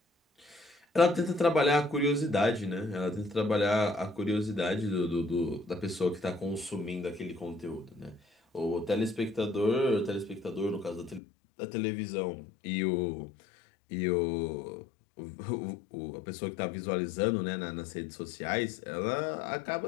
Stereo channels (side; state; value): right; drops out; at 11.2 s